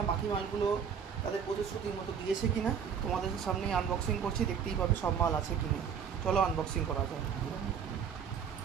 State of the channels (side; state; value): left; quieter; 7.3 dB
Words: বাকি মালগুলো তাদের প্রতিশ্রুতির মতো দিয়েছে কিনা। তোমাদের সামনেই আনবক্সিং করছি, দেখতেই পাবে সব মাল আছে কিনা। চলো আনবক্সিং করা যায়।